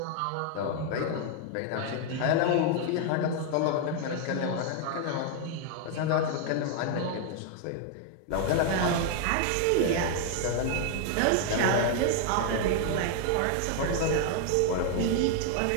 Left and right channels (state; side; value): different; both; correlation 0.00